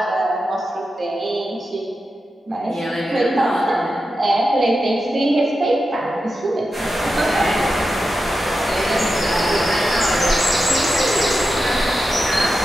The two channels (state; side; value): normal; both; correlation 0.90